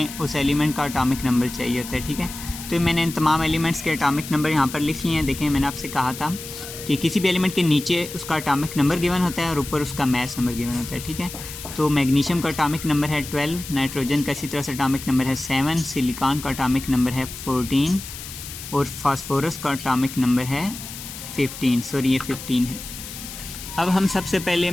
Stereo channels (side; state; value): left; noise; hiss, 11 dB below the sound